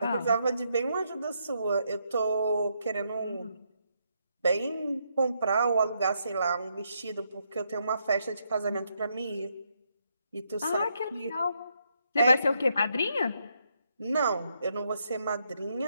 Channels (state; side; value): inverted; both; correlation -0.77